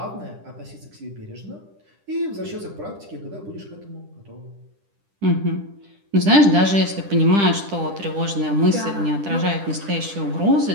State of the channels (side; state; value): left; late; 10 ms